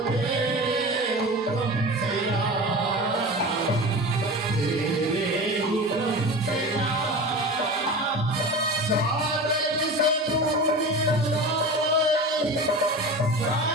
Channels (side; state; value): both; normal; correlation 0.31